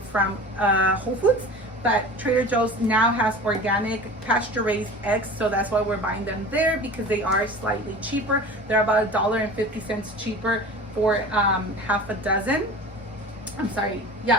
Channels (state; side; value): normal; both; correlation 0.37